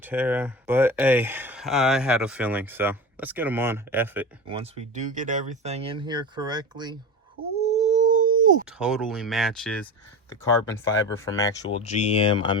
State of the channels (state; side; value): normal; both; correlation 0.27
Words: But hey, I had a feeling, so let's get them on. F it. Once we do get everything in here correctly, ooh, totally matches the carbon fiber from actual GM. I